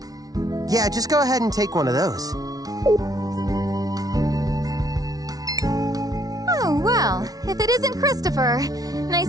Yeah, just go ahead and take one of those. Oh, well, if it isn't Christopher,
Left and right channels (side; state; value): left; late; 0.18 ms